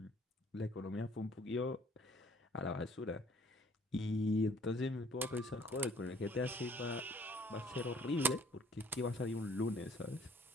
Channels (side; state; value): both; normal; correlation 0.59